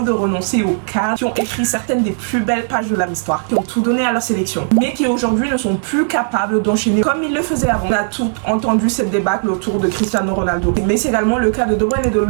de renoncer aux cadres qui ont écrit certaines des plus belles pages de leur histoire, qui ont tout donné à leur sélection, mais qui aujourd'hui ne sont plus capables d'enchaîner comme ils le faisaient avant. On a tout entendu cette débâcle autour de Cristiano Ronaldo, mais c'est également le cas de De Bruyne et de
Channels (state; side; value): silent; left; 64 dB below the other